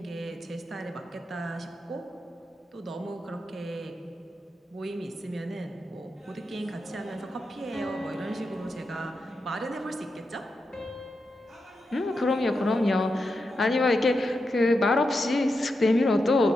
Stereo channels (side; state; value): both; normal; correlation 0.87